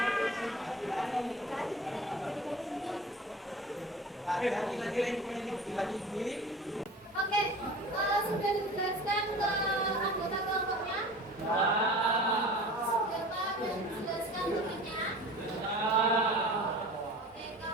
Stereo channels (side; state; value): both; normal; correlation 0.40